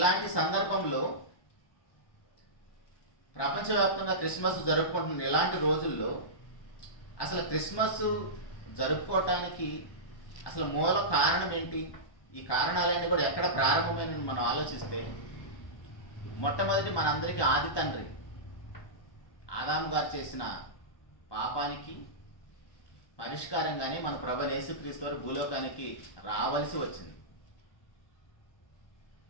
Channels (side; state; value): right; late; 1.2 ms